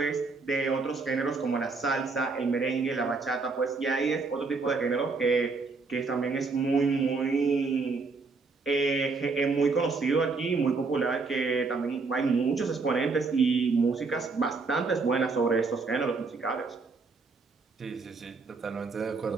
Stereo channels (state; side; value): quieter; left; 4.3 dB